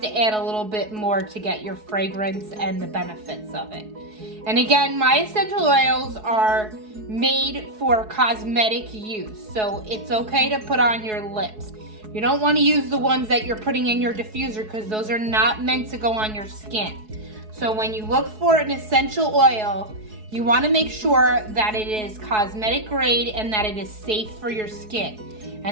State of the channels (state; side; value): late; left; 4.7 ms